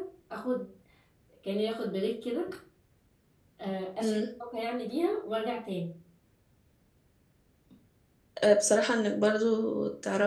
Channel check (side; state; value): both; identical; correlation 1.00